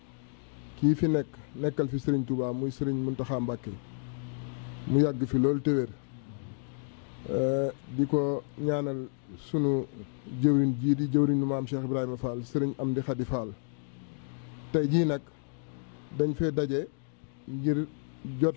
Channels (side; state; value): right; silent; 57 dB below the other